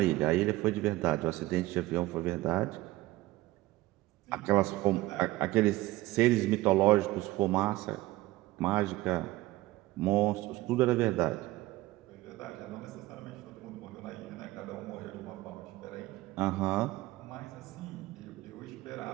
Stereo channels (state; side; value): quieter; left; 18.1 dB